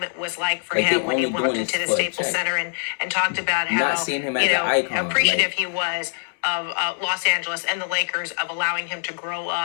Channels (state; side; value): silent; right; 63 dB below the other